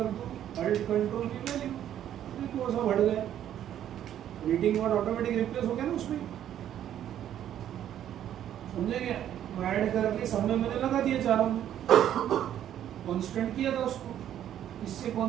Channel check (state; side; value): quieter; left; 10.8 dB